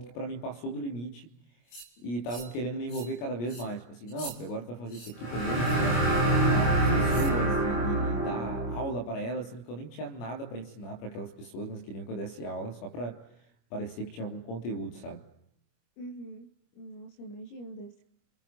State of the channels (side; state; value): right; late; 25 ms